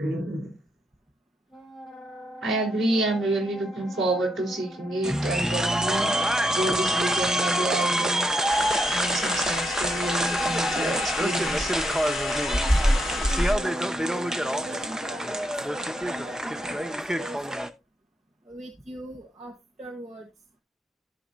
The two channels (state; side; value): normal; both; correlation 0.79